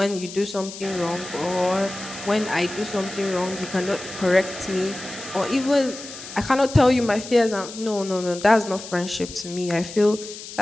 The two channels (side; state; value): left; noise; hiss, 13 dB below the sound